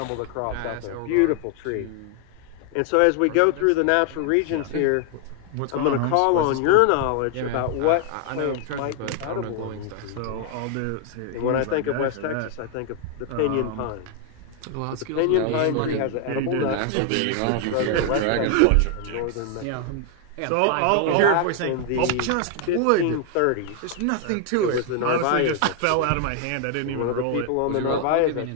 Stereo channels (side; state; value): both; different; correlation 0.00